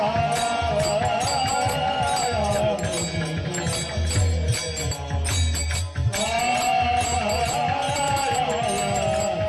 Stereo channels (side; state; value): both; identical; correlation 1.00